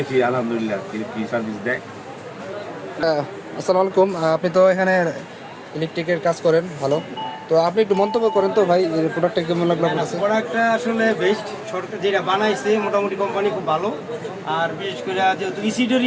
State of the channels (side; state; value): both; identical; correlation 1.00